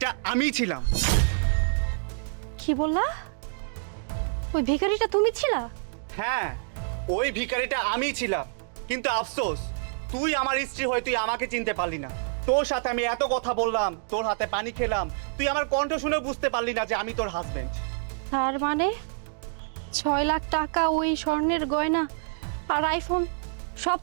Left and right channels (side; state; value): left; silent; digital silence